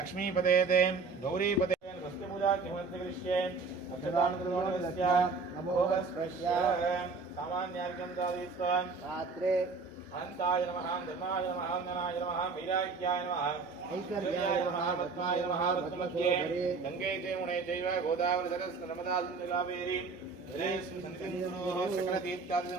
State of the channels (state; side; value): quieter; left; 4.5 dB